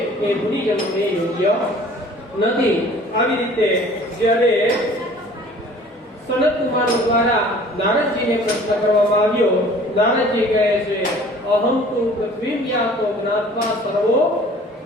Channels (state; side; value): normal; both; correlation 0.49